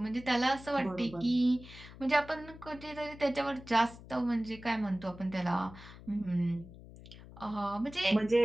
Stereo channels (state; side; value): noise; left; hum, 17 dB below the sound